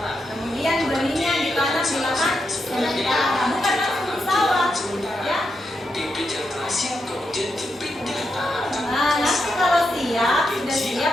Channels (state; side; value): normal; both; correlation 0.84